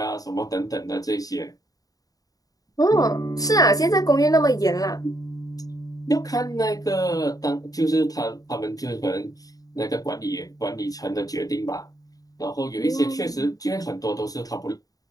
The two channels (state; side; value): late; right; 0.18 ms